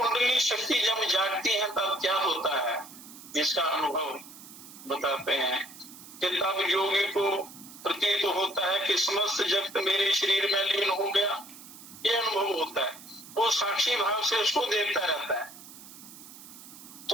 शक्ति जब जागती है तब क्या होता है, इसका अनुभव बताते हैं कि तब योगी को प्रतीत होता है कि समस्त जगत मेरे शरीर में लीन हो गया, ये अनुभव होता है। वो साक्षी भाव से उसको देखता रहता है।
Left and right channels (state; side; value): noise; right; hiss, 17 dB below the sound